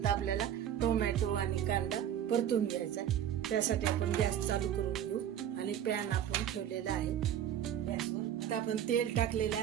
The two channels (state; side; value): quieter; left; 10.1 dB